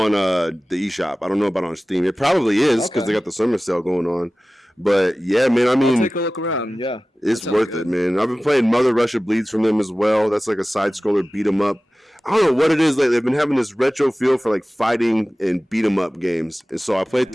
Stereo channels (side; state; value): both; normal; correlation 0.97